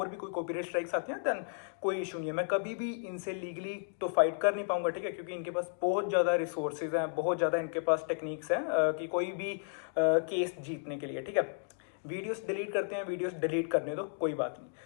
भी कोई कॉपीराइट स्ट्राइक्स आती हैं देन कोई इशू नहीं है, मैं कभी भी इनसे लीगली तो फाइट कर नहीं पाऊंगा, ठीक है, क्योंकि इनके पास बहुत ज़्यादा रिसोर्सेज हैं, बहुत ज़्यादा इनके पास टेक्निक्स हैं कि कोई भी केस जीतने के लिए, ठीक है। वीडियोस डिलीट करते हैं, वीडियोस डिलीट करने दो, कोई बात नहीं।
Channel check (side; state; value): right; silent; digital silence